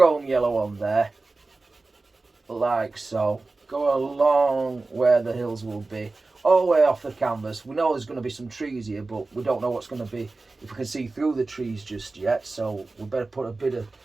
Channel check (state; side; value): quieter; left; 3.5 dB